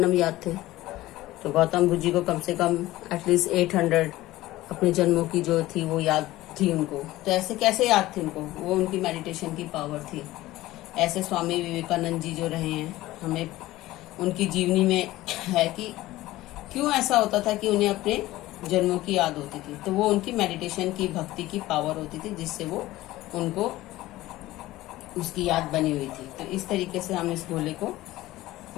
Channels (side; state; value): right; quieter; 17.0 dB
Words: याद थे, तो गौतम बुद्ध जी को कम से कम एटलीस्ट 800 अपने जन्मों की जो थी वो याद थी उनको। तो ऐसे कैसे याद थी उनको, वो उनकी मेडिटेशन की पावर थी। ऐसे स्वामी विवेकानंद जी जो रहे हैं, हमें उनकी जीवनी में है कि क्यों ऐसा होता था कि उन्हें अपने जन्मों की याद होती थी, तो वो उनकी मेडिटेशन की, भक्ति की पावर होती थी, जिससे वो उनको उसकी याद बनी हुई थी। तो इस तरीके से हम इस गोले को